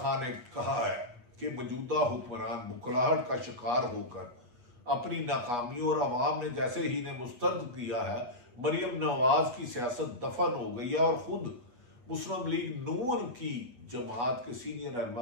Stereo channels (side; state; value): left; late; 8.3 ms